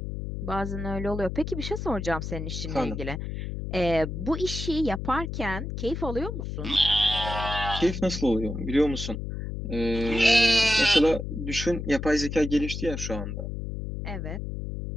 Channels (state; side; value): noise; left; hum, 5 dB below the sound